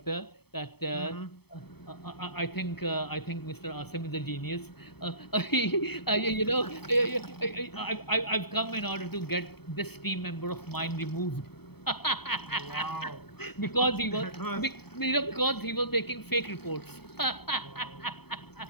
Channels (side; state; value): right; late; 0.97 ms